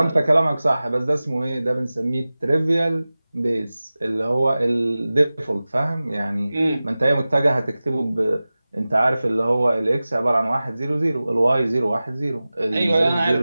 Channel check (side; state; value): both; inverted; correlation -0.97